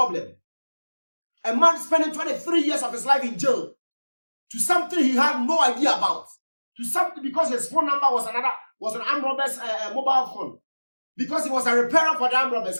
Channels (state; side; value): inverted; both; correlation -1.00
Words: A man spending 23 years of his life in jail to something he had no idea about, to something because his phone number was an armed robber's mobile phone, because he was a repairer for the armed robbers.